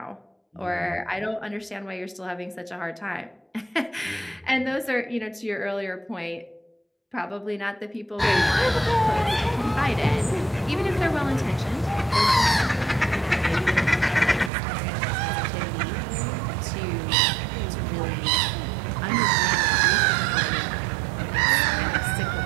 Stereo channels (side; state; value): left; drops out; at 14.5 s